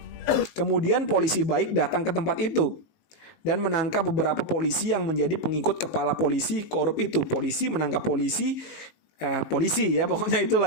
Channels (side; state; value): right; late; 19 ms